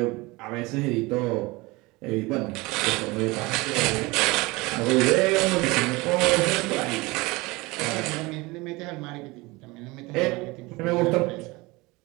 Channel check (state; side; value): quieter; left; 23.1 dB